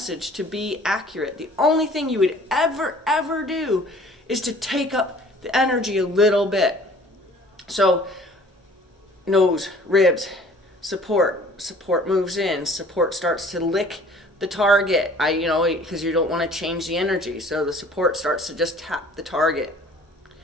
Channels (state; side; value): normal; both; correlation 0.51